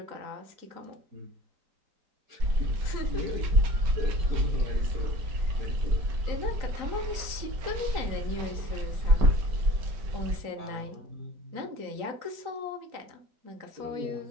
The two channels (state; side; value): late; left; 3.9 ms